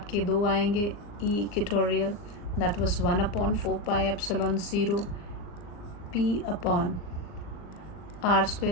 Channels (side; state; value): right; late; 39 ms